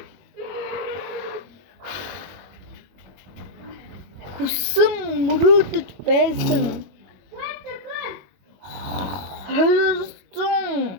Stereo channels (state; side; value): late; left; 22 ms